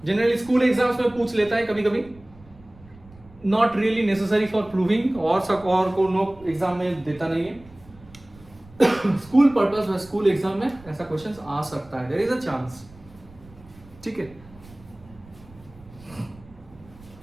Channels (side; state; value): right; noise; rumble, 23 dB below the sound